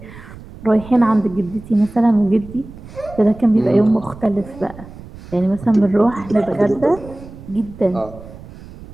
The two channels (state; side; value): noise; right; rumble, 17 dB below the sound